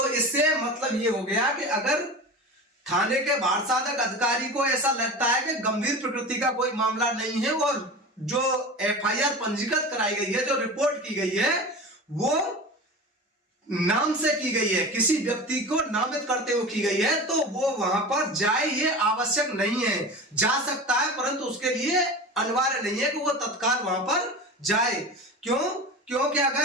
इससे मतलब ये हो गया कि अगर थाने के भार साधक अधिकारी को ऐसा लगता है कि गंभीर प्रकृति का कोई मामला नहीं है और जो एफआईआर पंजीकृत कराई गई है, जो रिपोर्ट की गई है, वो नाम से की गई है, किसी व्यक्ति को नामित करते हुए की गई है, तो वो वहां पर जाए ये आवश्यक नहीं है। जा सकता है परंतु उसके लिए अनिवार्य नहीं है कि वो तत्काल वहां पर जाए। क्यों? क्योंकि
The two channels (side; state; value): both; normal; correlation 0.31